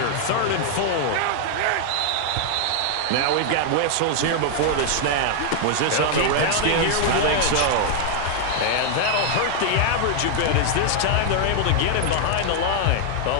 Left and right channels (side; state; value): both; different; correlation 0.00